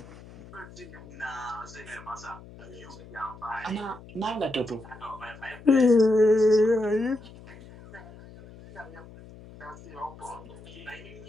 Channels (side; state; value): left; noise; hum, 18 dB below the sound